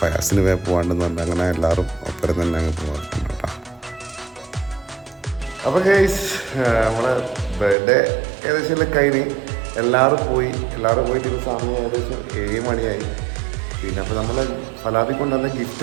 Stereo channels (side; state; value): left; drops out; at 7.8 s